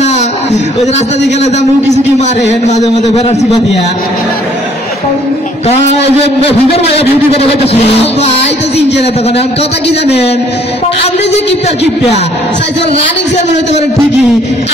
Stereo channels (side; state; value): both; normal; correlation 0.61